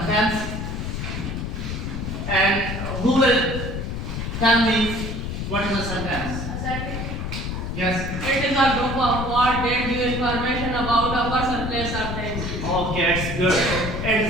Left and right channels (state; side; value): noise; left; rumble, 4 dB below the sound